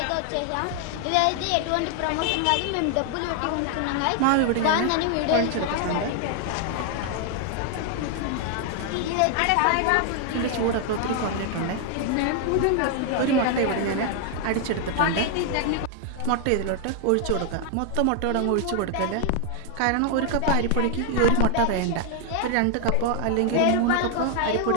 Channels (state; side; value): different; both; correlation 0.00